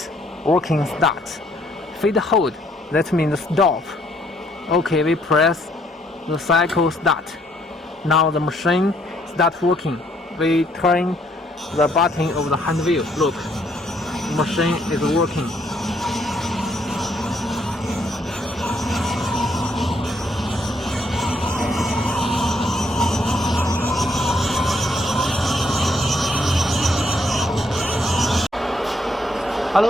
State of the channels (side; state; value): both; normal; correlation 0.70